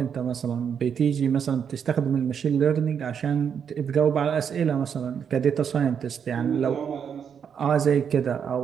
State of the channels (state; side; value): quieter; left; 7.5 dB